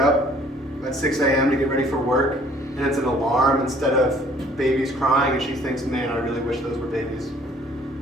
at 6 a.m. to get ready for work, and it's an alarm instead of babies crying, and she thinks, man, I really wish those were babies?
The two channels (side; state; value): both; normal; correlation 0.57